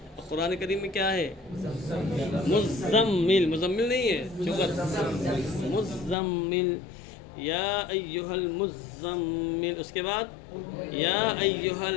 قرآن کریم میں کیا ہے؟ مزمل. مزمل نہیں ہے، مزمل. یا ایہا المزمل، اس کے بعد یا ایہا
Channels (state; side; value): drops out; right; at 6.2 s